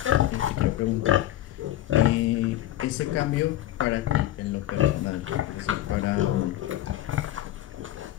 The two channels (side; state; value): right; quieter; 13.7 dB